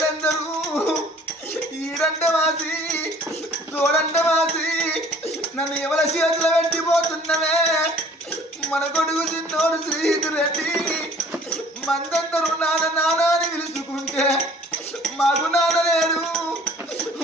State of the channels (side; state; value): both; normal; correlation 0.52